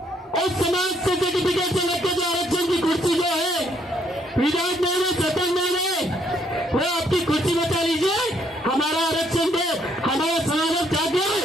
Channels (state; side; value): normal; both; correlation 0.70